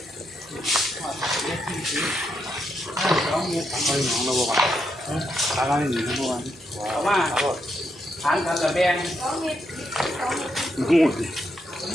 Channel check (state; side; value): normal; both; correlation 0.80